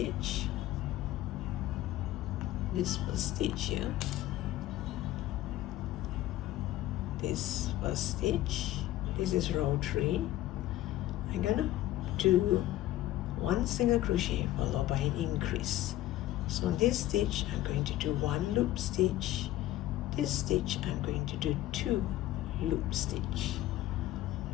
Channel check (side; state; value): right; quieter; 14.8 dB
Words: This first stitch here, this first stitch, this is row 3. I'm gonna do 1 single crochet followed by an increase. So on this stitch I'm going to do 1 loop stitch. This stitch I'm going to do 2 loop stitch.